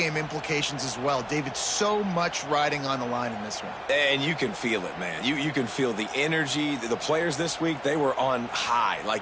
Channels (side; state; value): both; identical; correlation 1.00